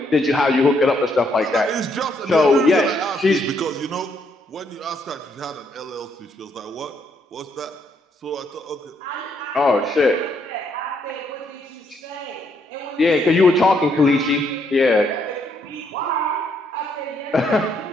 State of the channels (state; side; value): normal; both; correlation 0.73